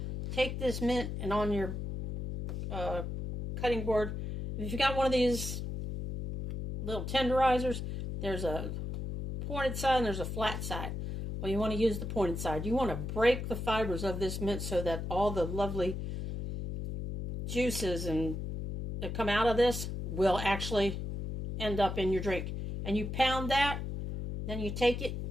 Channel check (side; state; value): left; noise; hum, 5 dB below the sound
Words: Take this mint, and on your cutting board, if you got one of these little tenderizers, there's a pointed side and there's a flat side. Well, you want to use the pointed side. You want to break the fibers of this mint so that all the lovely juices that come out of this will actually end up in your drink. And you pound that, then you take it.